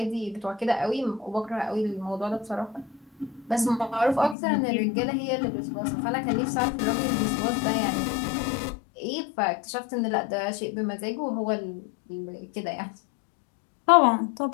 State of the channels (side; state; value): right; drops out; at 4.4 s